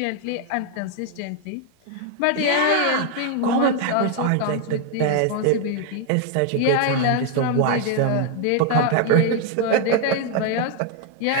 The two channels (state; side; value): different; both; correlation 0.00